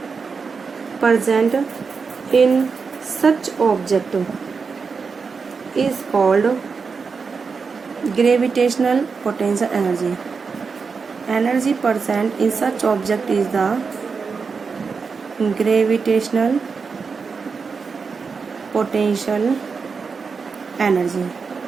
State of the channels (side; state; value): left; quieter; 5.2 dB